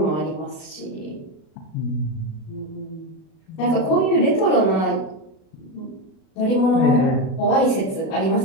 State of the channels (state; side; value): late; right; 37 ms